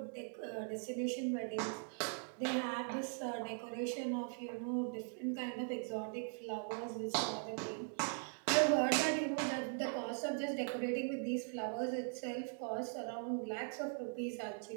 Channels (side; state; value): left; silent; 51 dB below the other